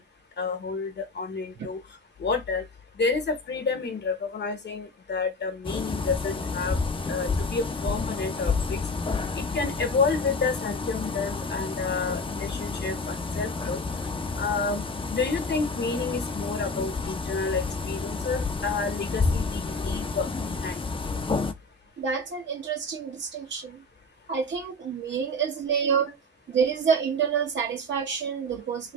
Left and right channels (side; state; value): both; normal; correlation 0.29